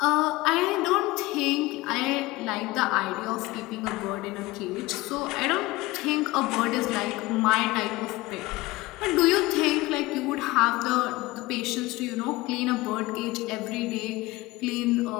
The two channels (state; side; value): quieter; right; 20.2 dB